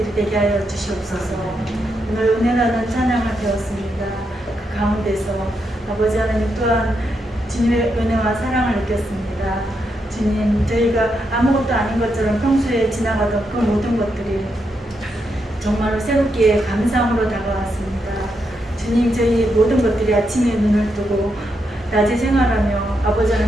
되게 하여 주시옵소서. 오늘 은혜라는 찬양을 배웠습니다. 그 가운데서 아버지 하나님 또한 주님의 은혜와 사랑을 느꼈습니다. 주님 저희가 아무것도 아닌 것처럼 평소에 지나가던 그 모든 것들이 정말로 새롭게 감사함으로 다가왔습니다. 주님 저희 모든 것들이 아침에 눈을 뜨고 낮에 생활하며 아버지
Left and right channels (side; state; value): both; normal; correlation 0.82